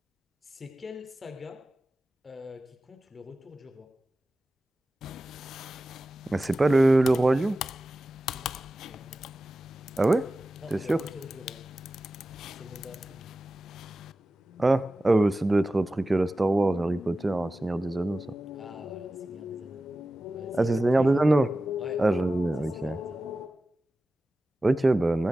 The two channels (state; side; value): normal; both; correlation 0.95